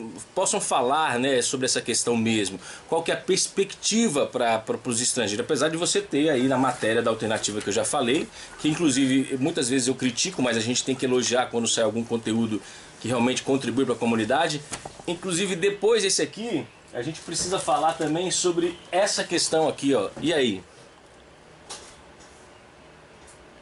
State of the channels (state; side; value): identical; both; correlation 1.00